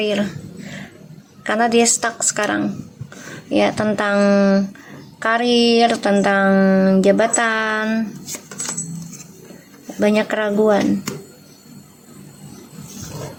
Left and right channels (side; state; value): both; identical; correlation 1.00